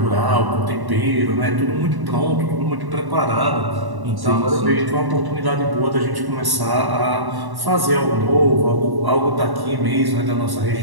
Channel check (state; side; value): late; left; 1.1 ms